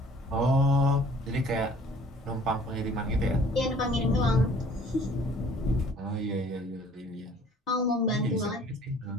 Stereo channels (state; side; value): normal; both; correlation 0.54